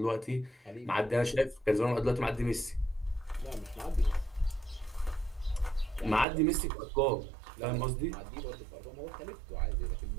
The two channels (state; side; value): drops out; left; at 6.2 s